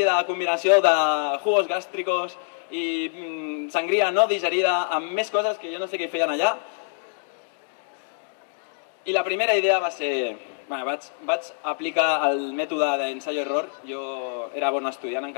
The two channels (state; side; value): silent; right; digital silence